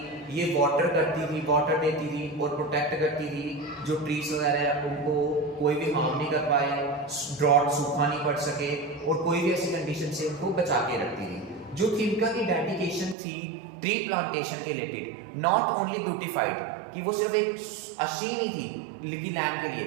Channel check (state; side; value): drops out; left; at 13.2 s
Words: ये वाटर करती थी, वाटर देती थी और प्रोटेक्ट करती थी जो ट्रीज वगैरह हैं उनको कोई भी हार्म नहीं कर पाए, ड्रॉट सूखा नहीं पड़ सके और कोई भी ऐसी कंडीशन से उनको बचा के रखती थी। जो थिमका की डेडिकेशन थी ट्री प्लांटेशन के रिलेटेड, नॉट ओनली ब्यूटिफाइड कि वो सिर्फ एक अच्छी नहीं थी लिखी लैंड के